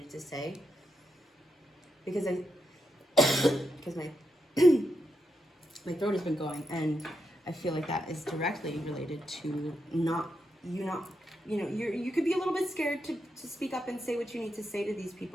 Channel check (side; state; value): both; normal; correlation 0.84